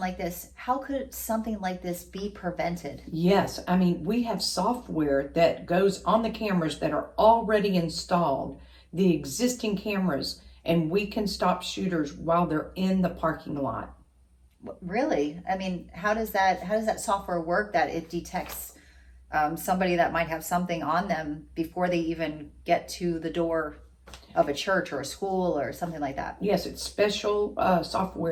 this, how could something like this be prevented? Yes, I mean, we have software that goes on the cameras that are already installed, the existing cameras, and we can stop shooters while they're in the parking lot. Really? I mean, how does that software work that it detects somebody that might have something on them before they even get to the door of a church or a school or something like that? Yes, it's special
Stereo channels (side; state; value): both; identical; correlation 1.00